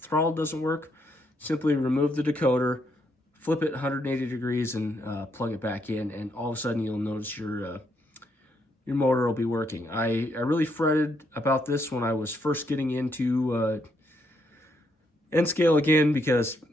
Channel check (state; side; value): normal; both; correlation 0.75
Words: doesn't work, simply remove the decoder, flip it 180 degrees, and plug it back in, and all of a sudden you'll notice your motor will be working. I really fretted about this when I was first getting into N-Scale again, because